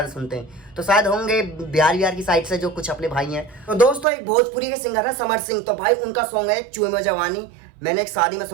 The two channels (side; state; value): left; drops out; at 4.0 s